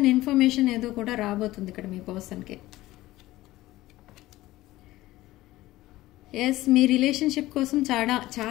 ఇన్ఫర్మేషన్ ఏదో కూడా రాబోతుంది ఇక్కడ మీ పర్సన్కి. ఎస్, మీ రిలేషన్షిప్ కోసం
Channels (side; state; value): right; quieter; 17.0 dB